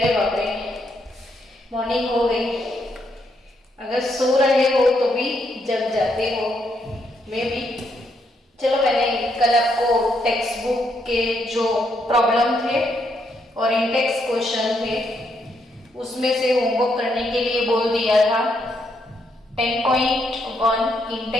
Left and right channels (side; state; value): both; normal; correlation 0.76